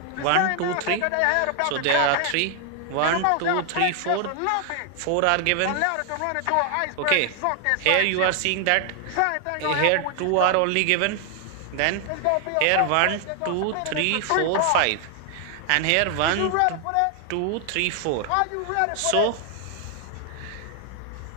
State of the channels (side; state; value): both; different; correlation 0.00